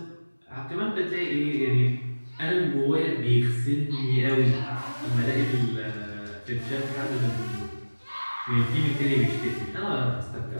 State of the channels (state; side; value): inverted; both; correlation -1.00